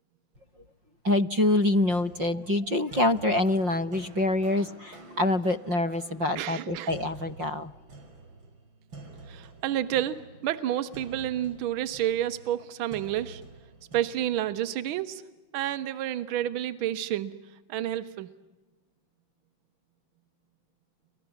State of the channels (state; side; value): late; left; 5.6 ms